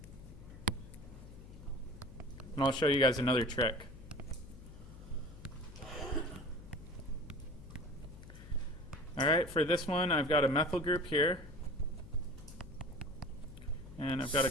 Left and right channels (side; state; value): left; noise; hum, 16 dB below the sound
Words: And I'll show you guys another trick. All right, for this one, I've got a methyl group here. And I've got a